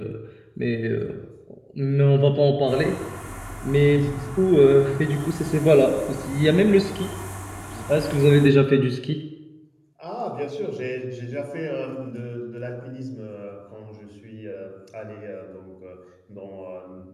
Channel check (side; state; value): both; identical; correlation 1.00